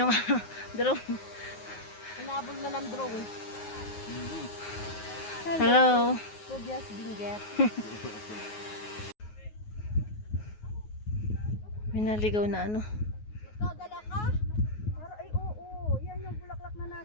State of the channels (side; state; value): right; late; 9.5 ms